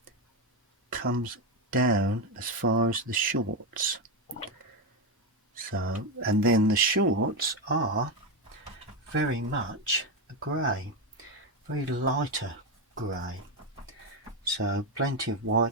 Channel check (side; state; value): both; normal; correlation 0.09